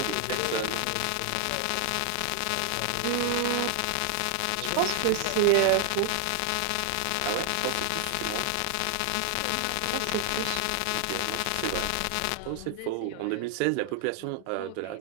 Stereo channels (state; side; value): different; both; correlation 0.00